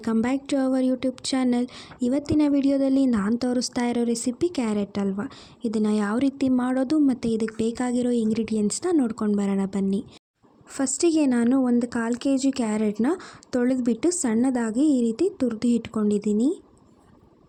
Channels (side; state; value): both; identical; correlation 1.00